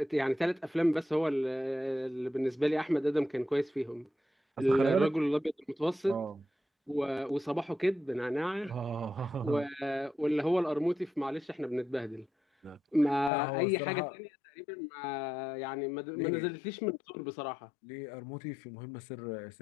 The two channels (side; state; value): right; drops out; at 13.3 s